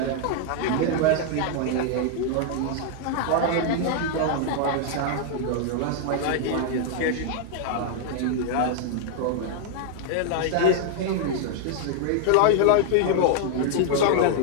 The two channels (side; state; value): both; different; correlation 0.00